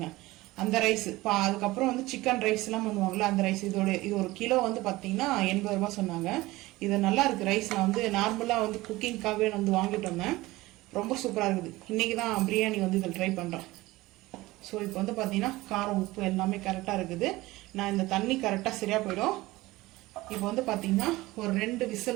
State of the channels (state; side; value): quieter; left; 19.2 dB